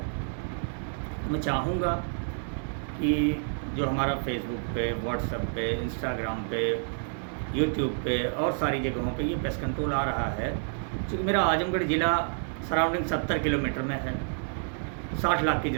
मैं चाहूँगा कि जो हमारा फेसबुक पे, व्हाट्सएप पे, इंस्टाग्राम पे, यूट्यूब पे और सारी जगहों पे ये पेस्ट कंट्रोल आ रहा है। क्योंकि मेरा आजमगढ़ ज़िला सराउंडिंग 70 किलोमीटर में है, 60 लाख की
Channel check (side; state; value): left; silent; digital silence